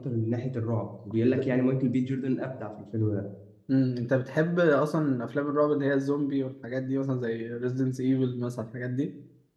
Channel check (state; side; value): identical; both; correlation 1.00